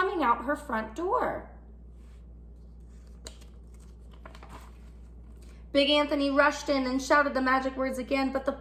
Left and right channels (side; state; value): both; identical; correlation 1.00